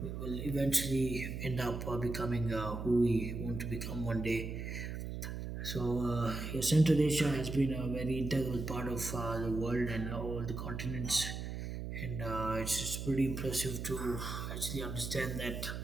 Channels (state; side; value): noise; right; hum, 5 dB below the sound